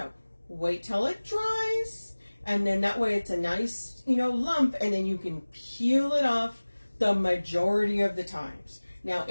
Wait till it dries, and then that way it's a nice, you know, lump, and then you can peel it off the majority of the times. Now,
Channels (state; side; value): inverted; both; correlation -1.00